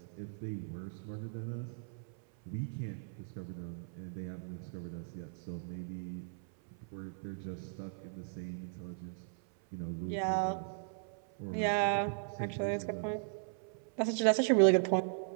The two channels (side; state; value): left; silent; 53 dB below the other